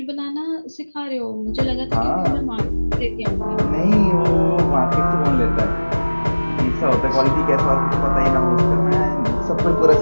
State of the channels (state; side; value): inverted; both; correlation -1.00